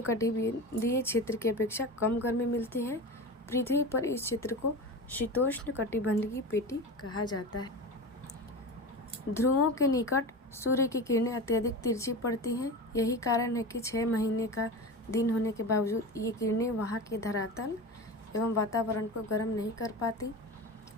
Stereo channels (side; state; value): both; normal; correlation 0.28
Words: क्षेत्र की अपेक्षा कम गर्मी मिलती है। पृथ्वी पर इस क्षेत्र को शीतोष्ण कटिबंधीय पेटी कहा जाता है। ध्रुवों के निकट सूर्य की किरणें अत्यधिक तिरछी पड़ती हैं। यही कारण है कि 6 महीने का दिन होने के बावजूद ये किरणें वहाँ के धरातल एवं वातावरण को गर्म नहीं कर पाती,